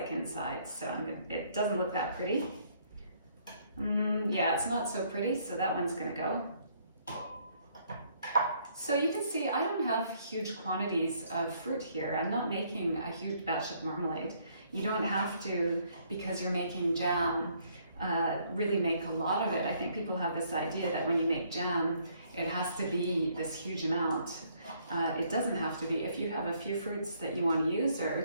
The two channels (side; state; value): both; inverted; correlation -0.67